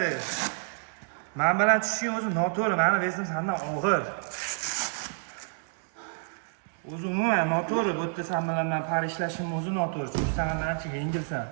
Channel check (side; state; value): left; silent; 59 dB below the other